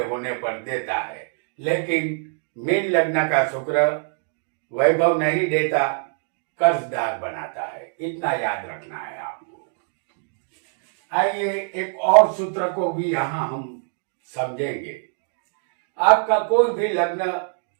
होने पर देता है। लेकिन मीन लग्न का शुक्र वैभव नहीं देता, कर्जदार बनाता है। इतना याद रखना है आपको। आइए एक और सूत्र को भी यहाँ हम समझेंगे। आपका कोई भी लग्न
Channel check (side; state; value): left; silent; 63 dB below the other